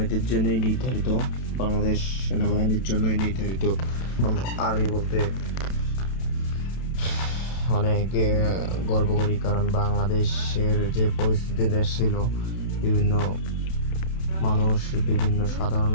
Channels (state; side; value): late; right; 32 ms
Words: জন্যই নির্ধারিত, বাংলাদেশ সেনাবাহিনীর জন্যই নির্ধারিত। আর্মি বলতে অনেক গর্ব করি, কারণ বাংলাদেশের যে পরিস্থিতি দেশ ছিল, বিভিন্ন মানুষ, বিভিন্ন সাধারণ